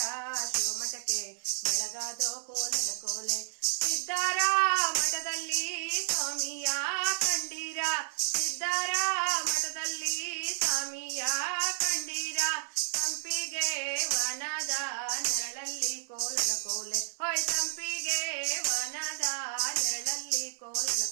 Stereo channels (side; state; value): left; silent; 57 dB below the other